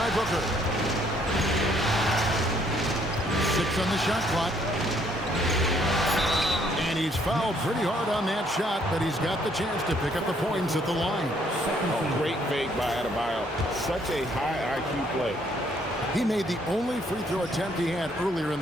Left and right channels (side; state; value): both; normal; correlation 0.66